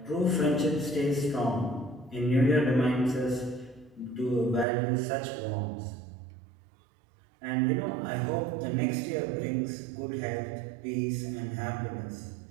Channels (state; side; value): drops out; left; at 4.7 s